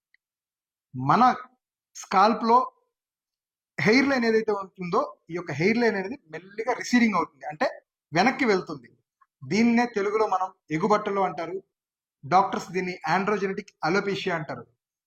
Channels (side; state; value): both; identical; correlation 1.00